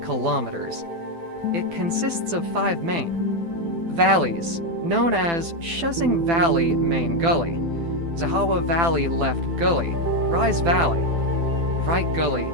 It consists of 5 main valleys, known as Shuzing Valley Main Gully, Zhawa Valley Left Gully, Rise Valley, Right Gully,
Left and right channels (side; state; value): left; late; 12 ms